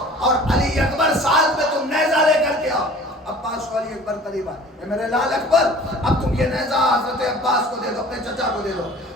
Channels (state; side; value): normal; both; correlation 0.46